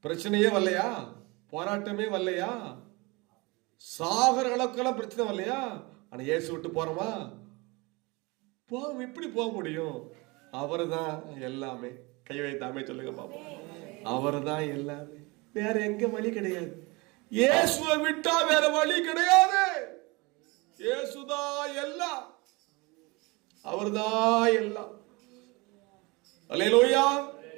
பிரச்சனையே வரலையா? போராட்டமே வரலையா? சாகர அளவுக்கெல்லாம் பிரச்சனை வரலையா? ஆனா இயேசு விட்டு போறோமா? இப்படி போக முடியும்? அவரு தான் எல்லாமே. கை வைத்தாமே சொல்லுங்க பாப்பா. அவரு தான் எல்லாமே. வேற எங்க வழி கிடையாது. இயேசுவை விட்டா வேற வழி கிடையாது. இயேசுதான் எல்லாம். அவர்தான் எல்லாம். அல்லேலூயா.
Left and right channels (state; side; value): quieter; left; 25.5 dB